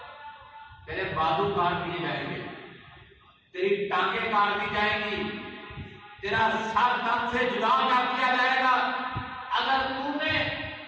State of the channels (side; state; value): both; identical; correlation 1.00